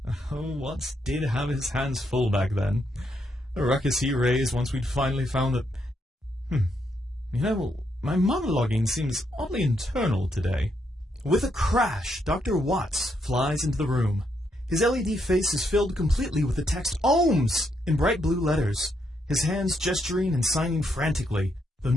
Oh, Watts did have his hands full back then. The ruckus he raised once we'd finally found that... my monologuing seems oddly internal today. With a crash, Dr. Watts flies into the room. His LED face is filled completely with the text OHMS in bright blue letters, his hands gesturing and signing frantically, though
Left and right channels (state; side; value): normal; both; correlation 0.77